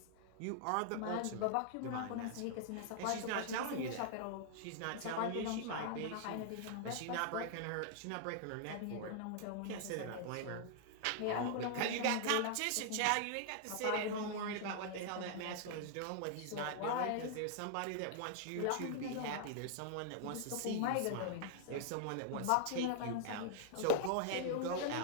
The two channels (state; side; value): different; both; correlation 0.00